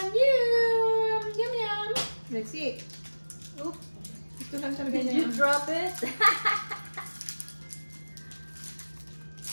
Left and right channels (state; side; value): inverted; both; correlation -1.00